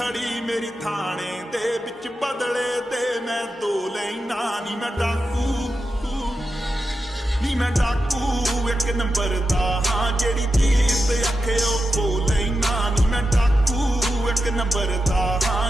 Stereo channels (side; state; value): both; normal; correlation 0.89